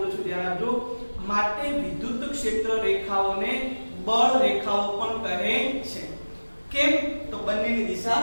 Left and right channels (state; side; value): inverted; both; correlation -1.00